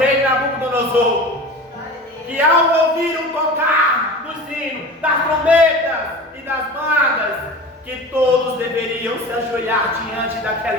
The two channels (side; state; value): both; normal; correlation 0.34